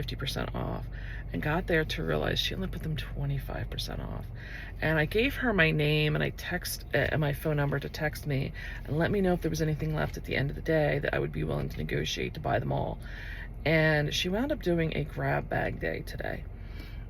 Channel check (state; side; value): identical; both; correlation 1.00